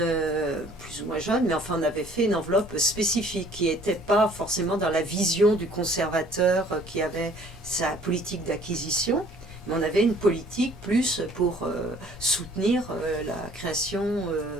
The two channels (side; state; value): both; normal; correlation 0.56